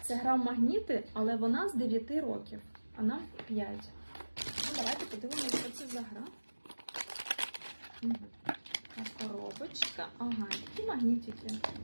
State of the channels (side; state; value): both; inverted; correlation -1.00